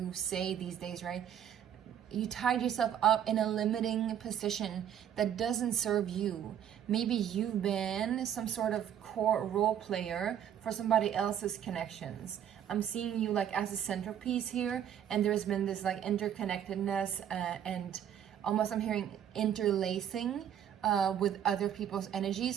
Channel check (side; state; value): left; quieter; 9.7 dB